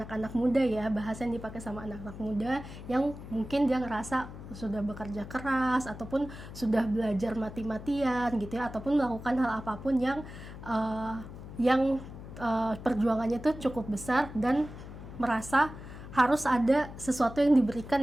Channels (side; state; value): left; noise; hum, 13 dB below the sound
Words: muda ya, bahasa yang dipakai sama anak-anak muda yang mungkin dia ngerasa sudah bekerja keras ataupun sudah belajar mati-matian gitu ya, ataupun melakukan hal apapun yang perjuangannya tuh cukup besar dan merasa harus ada sesuatu yang diberikan